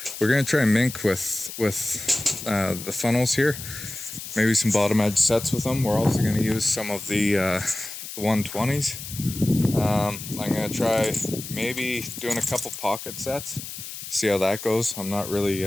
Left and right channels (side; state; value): left; noise; hiss, 10 dB below the sound